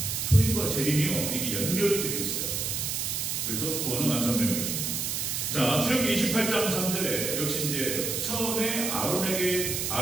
초림과 재림이요 이게 연결이 되어 있어요. 그래서 구원은 완성되는 것입니다. 자, 출애굽기 28장 3절에 역시 이제 처음에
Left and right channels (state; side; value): noise; right; hiss, 1 dB below the sound